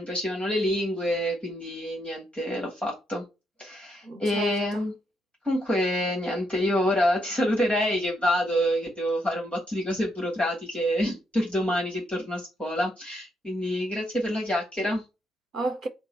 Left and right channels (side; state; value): both; normal; correlation 0.78